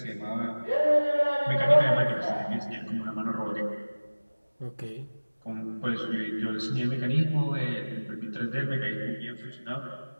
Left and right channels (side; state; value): both; inverted; correlation -1.00